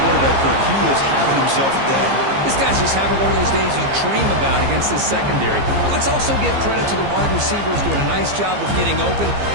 Kirk. He is having himself a day. This guy's just having one of those days you dream about against this secondary. Let's also give credit to the wide receivers doing a nice job of getting open,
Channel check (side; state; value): left; late; 15 ms